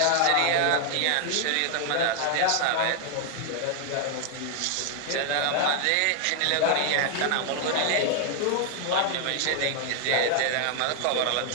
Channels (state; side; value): different; both; correlation 0.00